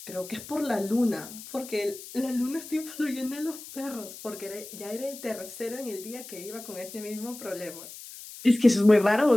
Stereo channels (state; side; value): noise; left; hiss, 14 dB below the sound